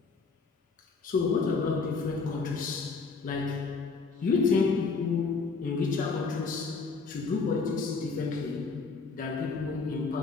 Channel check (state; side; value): quieter; right; 4.5 dB